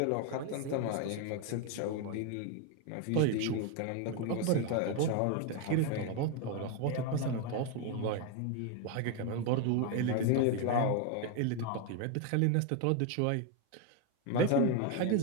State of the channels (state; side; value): different; both; correlation 0.01